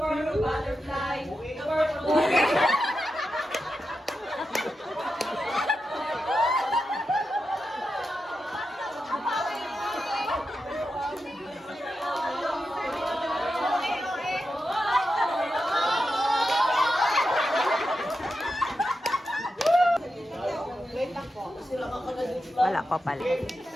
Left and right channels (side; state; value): both; normal; correlation 0.89